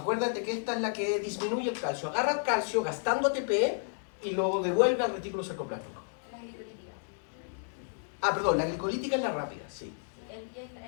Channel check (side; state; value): right; silent; digital silence